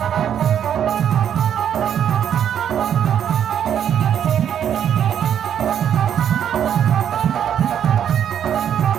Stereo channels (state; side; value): quieter; left; 9.3 dB